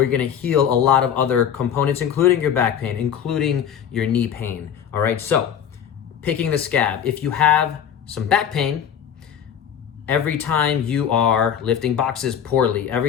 gonna heal a lot of other components, including your back pain, including your knee pain, all right? So, picking the scab. If you have some back pain, every time you are lifting boxes poorly,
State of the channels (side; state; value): right; quieter; 8.7 dB